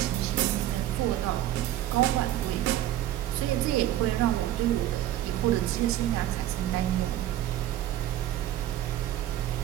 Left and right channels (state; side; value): quieter; left; 13.0 dB